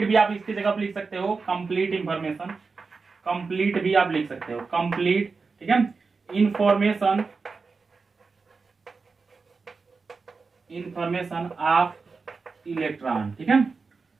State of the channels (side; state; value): left; quieter; 4.5 dB